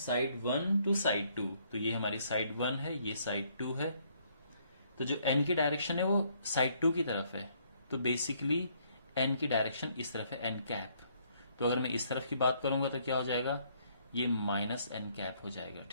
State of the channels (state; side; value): inverted; both; correlation -0.67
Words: 1 to side 2. तो ये हमारी साइड 1 है, ये साइड 2 है. तो जो n की डायरेक्शन है वो साइड 2 की तरफ है. तो बेसिकली n की डायरेक्शन इस तरफ है, n कैप. तो अगर मैं इस तरफ की बात करूंगा तो क्या हो जाएगा, ये माइनस n कैप हो जाएगा.